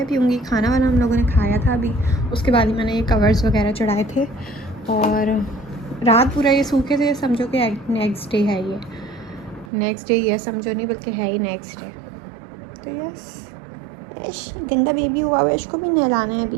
पीऊँगी। खाना वाना हम लोगों ने खाया था अभी, उसके बाद ही मैंने ये कवर्स वगैरह चढ़ाए थे और रात पूरा ये सूखे थे। समझो कि नेक्स्ट डे है, ये नेक्स्ट डे ये समझो नहीं बल्कि है ही नेक्स्ट डे। तो यस, गंदा बेबी हुआ है, इसको भी नहलाना है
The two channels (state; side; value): drops out; left; at 9.7 s